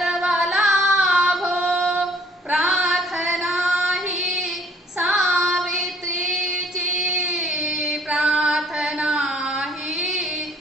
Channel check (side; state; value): both; normal; correlation 0.58